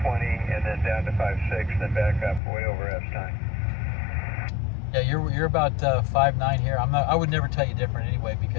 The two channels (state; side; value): drops out; right; at 2.4 s